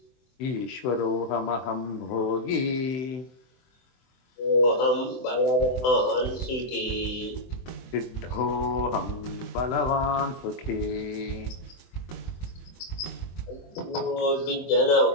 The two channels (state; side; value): late; right; 24 ms